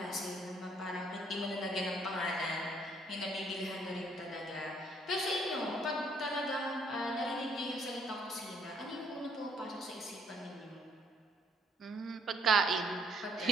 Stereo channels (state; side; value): normal; both; correlation 0.66